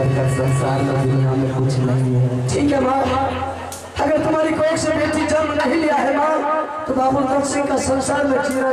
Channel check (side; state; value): both; identical; correlation 1.00